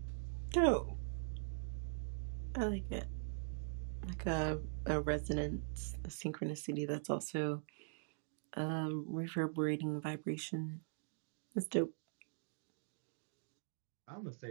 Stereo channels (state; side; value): silent; left; digital silence